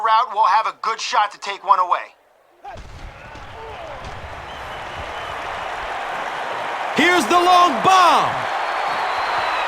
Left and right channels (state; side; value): identical; both; correlation 1.00